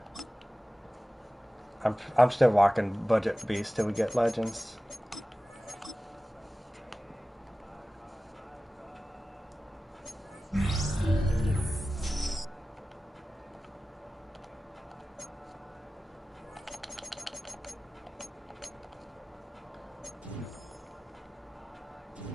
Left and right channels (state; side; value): normal; both; correlation 0.96